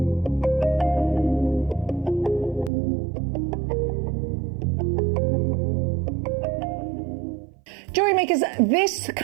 Jewellery Makers, this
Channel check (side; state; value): left; drops out; at 2.7 s